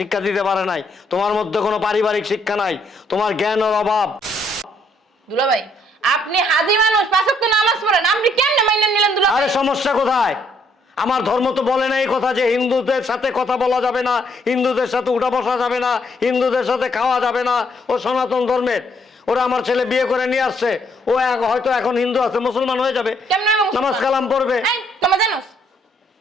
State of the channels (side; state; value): both; normal; correlation 0.70